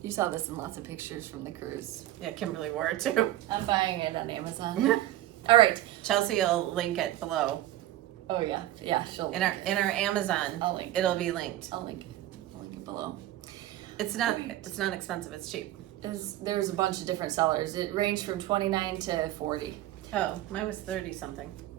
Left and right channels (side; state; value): left; quieter; 14.5 dB